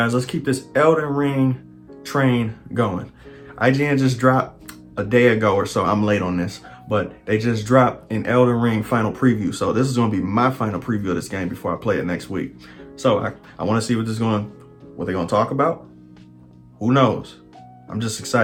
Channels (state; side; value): identical; both; correlation 1.00